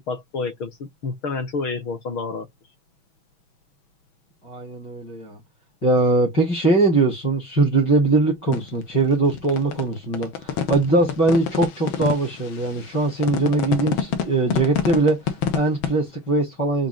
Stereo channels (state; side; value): late; right; 6.1 ms